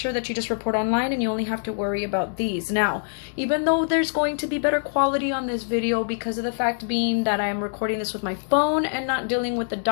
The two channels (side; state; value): right; silent; 62 dB below the other